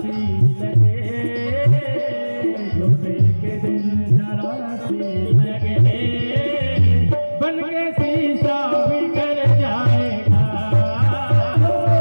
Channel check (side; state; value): both; inverted; correlation -1.00